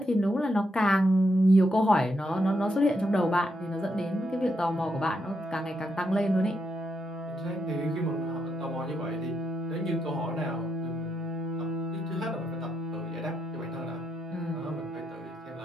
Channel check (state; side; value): normal; both; correlation 0.81